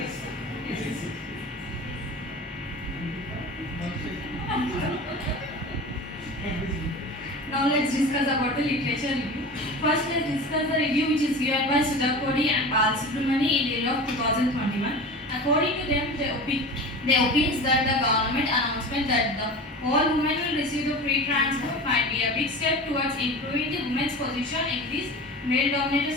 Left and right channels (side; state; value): both; normal; correlation 0.33